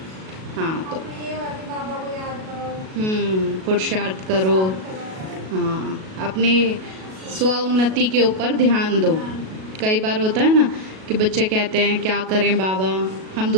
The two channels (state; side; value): late; left; 37 ms